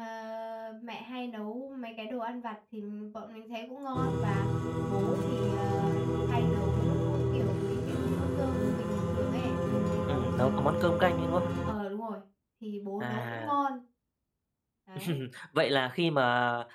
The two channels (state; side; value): identical; both; correlation 1.00